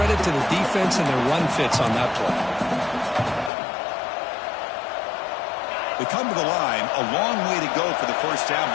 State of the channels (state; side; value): drops out; right; at 3.5 s